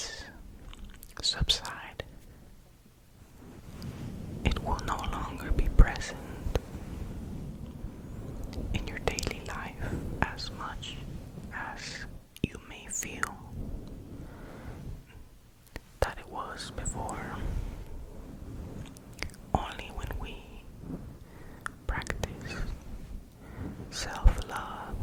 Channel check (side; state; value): both; identical; correlation 1.00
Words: subside. It will no longer be present in your daily life as much as you may feel that it was before. Only when we practice self-love,